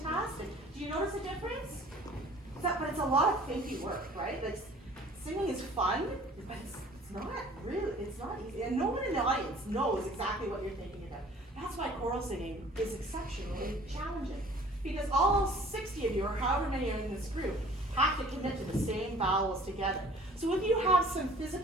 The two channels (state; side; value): normal; both; correlation 0.50